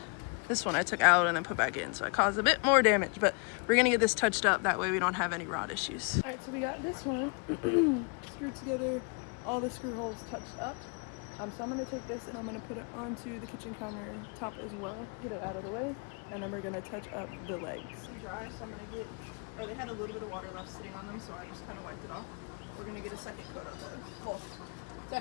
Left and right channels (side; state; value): right; quieter; 35.9 dB